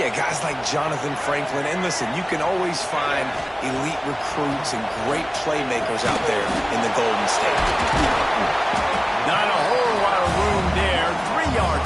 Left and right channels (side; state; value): both; identical; correlation 1.00